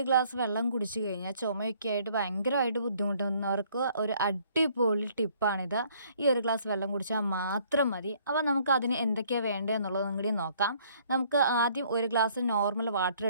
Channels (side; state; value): both; inverted; correlation -0.62